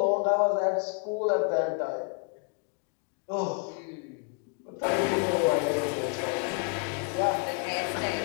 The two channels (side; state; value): right; quieter; 36.3 dB